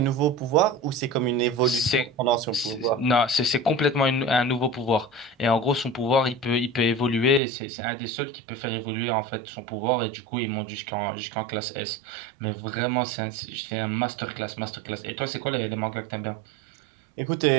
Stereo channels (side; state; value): left; drops out; at 7.4 s